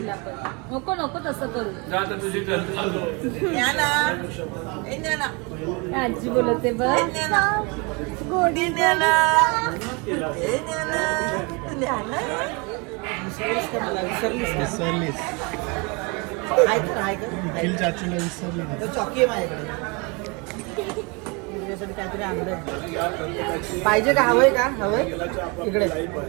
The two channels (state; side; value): quieter; left; 29.9 dB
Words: पण नको नको तसं करू. जा आता तुझी आजी बोलते बघ विसरलीस निखिल चाचूला विसरली चॉकी आहे माझ्याकडे तुझ्यासाठी काहीतरी आणलंय. पाहिजे का हवंय का हवंय इकडे